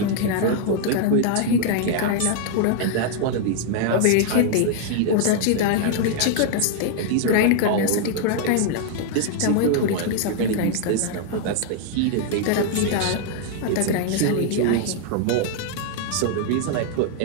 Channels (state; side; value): different; both; correlation 0.00